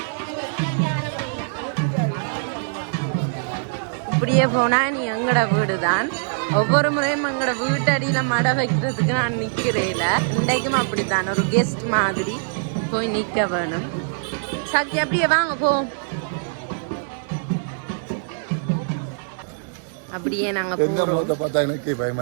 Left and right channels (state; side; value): silent; left; digital silence